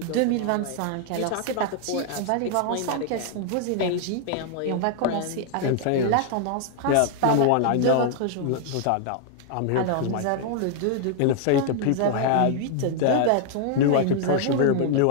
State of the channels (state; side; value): different; both; correlation 0.00